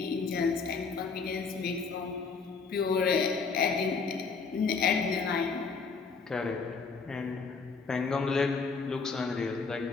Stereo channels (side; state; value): right; quieter; 4.8 dB